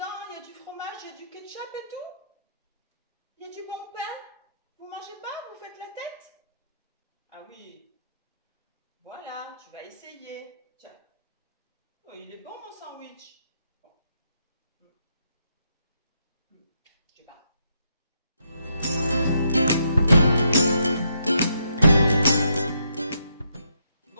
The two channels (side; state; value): both; inverted; correlation -0.77